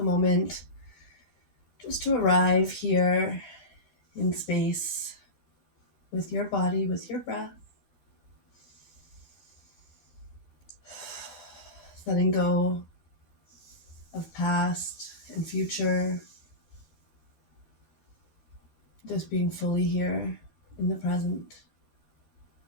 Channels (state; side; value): late; right; 13 ms